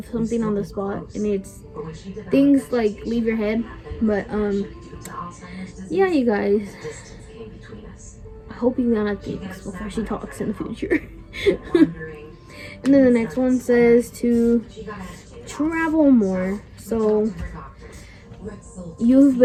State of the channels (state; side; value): identical; both; correlation 1.00